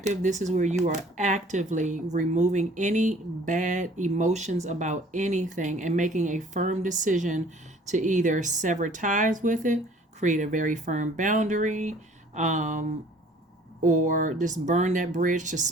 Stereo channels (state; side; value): normal; both; correlation 0.54